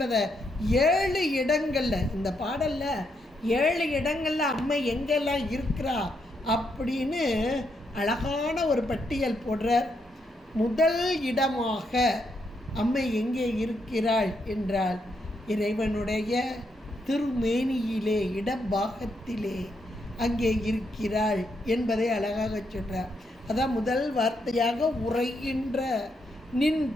7 இடங்களில் இந்த பாடலில் 7 இடங்களில் அம்மை எங்கெல்லாம் இருக்கிறா அப்படின்னு அழகான ஒரு பட்டியல் போடுறார். முதல் இடமாக அம்மை எங்கே இருக்கிறாள் என்றால் இறைவனுடைய திருமேனியிலே இடப்பாகத்திலே அங்கே இருக்கிறாள் என்பதை அழகாக சொல்கிறார். அதான் முதல் வார்த்தையாக உரைகின்ற நின்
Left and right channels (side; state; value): both; normal; correlation 0.79